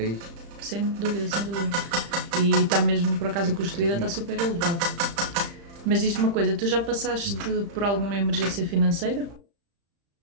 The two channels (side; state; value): left; late; 35 ms